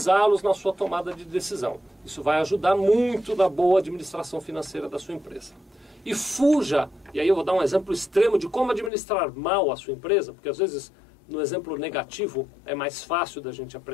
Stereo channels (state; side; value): drops out; right; at 8.9 s